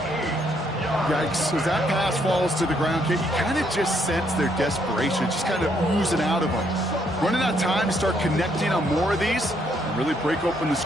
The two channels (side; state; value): both; normal; correlation 0.72